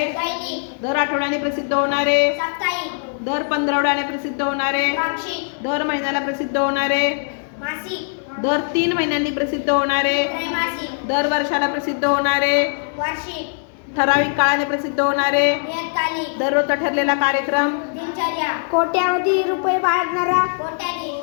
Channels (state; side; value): silent; right; digital silence